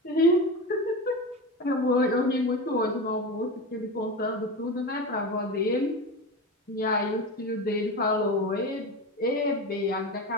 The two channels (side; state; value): both; normal; correlation 0.24